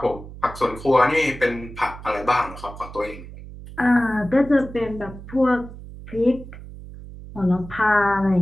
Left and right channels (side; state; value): right; noise; hum, 14 dB below the sound